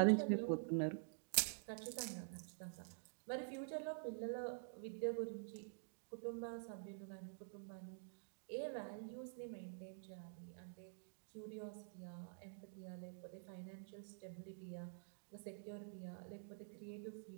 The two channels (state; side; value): silent; left; digital silence